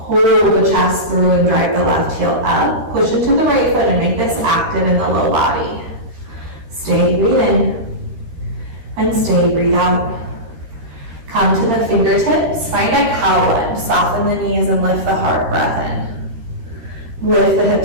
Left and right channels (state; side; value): late; left; 13 ms